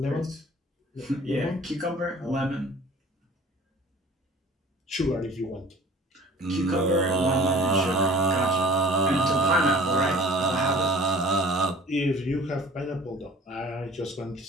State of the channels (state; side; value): normal; both; correlation 0.47